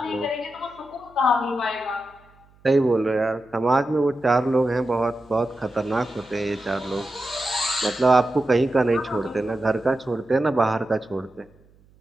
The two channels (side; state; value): right; noise; hum, 30 dB below the sound